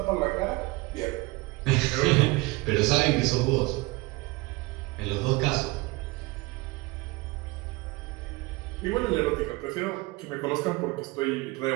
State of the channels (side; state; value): left; quieter; 22.8 dB